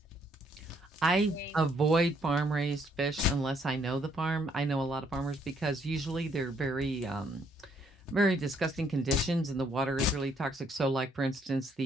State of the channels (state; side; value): normal; both; correlation 0.69